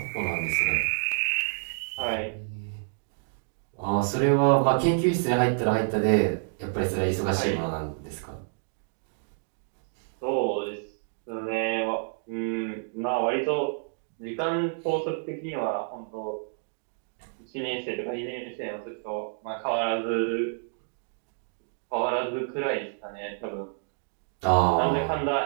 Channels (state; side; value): silent; left; digital silence